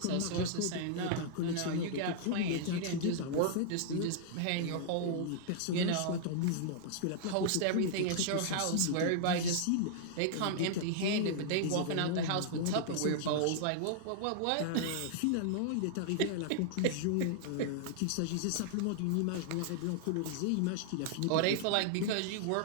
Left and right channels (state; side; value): different; both; correlation -0.01